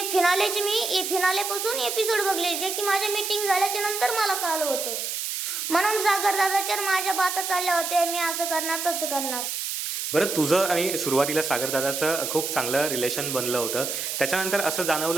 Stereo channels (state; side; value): noise; right; hiss, 3 dB below the sound